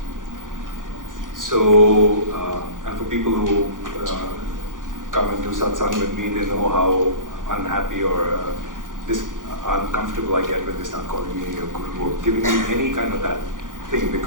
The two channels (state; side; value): late; left; 0.89 ms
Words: So, and for people who come and do satsang with me, they know how unhappy or uncomfortable I get when they start calling me a guru or giving me any kind of that thing,